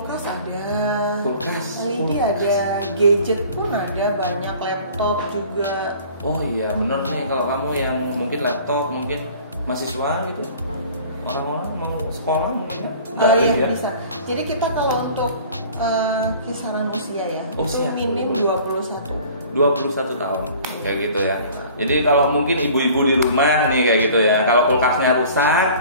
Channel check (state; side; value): inverted; both; correlation -0.47